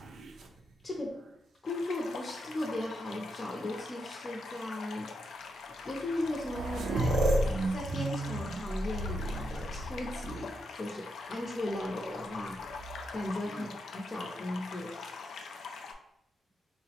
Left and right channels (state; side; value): normal; both; correlation 0.82